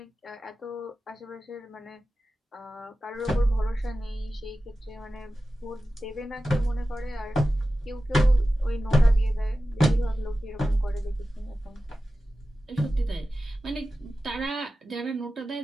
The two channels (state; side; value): normal; both; correlation 0.94